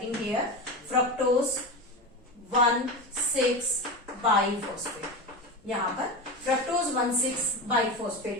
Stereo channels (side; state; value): both; normal; correlation 0.21